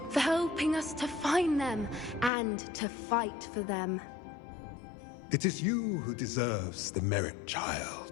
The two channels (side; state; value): right; drops out; at 2.3 s